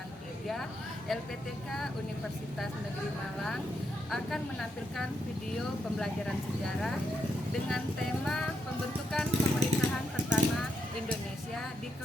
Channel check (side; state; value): both; normal; correlation 0.80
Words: 3 LPTK Universitas Negeri Malang akan menampilkan video pembelajaran sejarah dengan tema pembentukan pemerintahan pertama Indonesia di